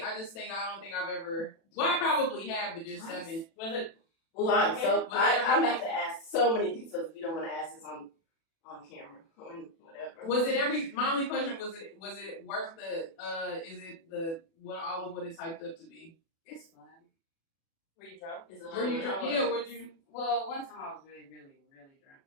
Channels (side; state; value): right; late; 36 ms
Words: I don't think I've ever. Well, I probably have, but just haven't. Was it? Well, I'm so Was it I'm about to ask so many details if you don't want to ask this on camera or whatever. Was it every? My only question was it worth the? Is it the what all of what it's hyped up to be? It's fun. Were you drunk? Is it Were you drunk? drunk? Yeah. Would you? Well, one time I was really, really, really drunk.